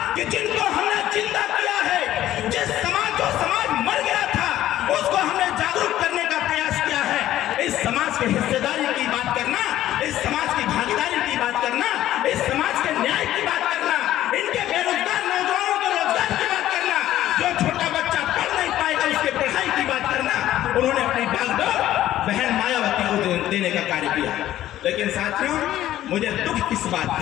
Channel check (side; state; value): right; quieter; 13.3 dB